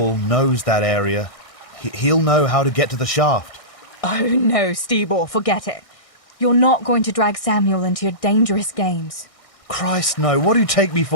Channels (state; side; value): late; right; 1.6 ms